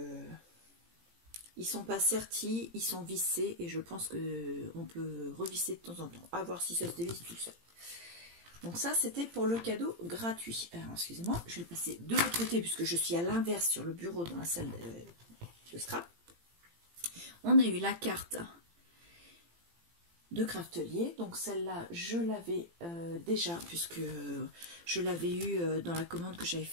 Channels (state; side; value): late; left; 18 ms